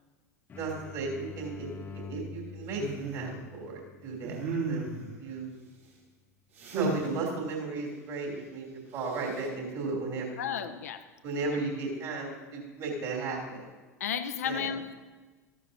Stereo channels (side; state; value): both; normal; correlation 0.08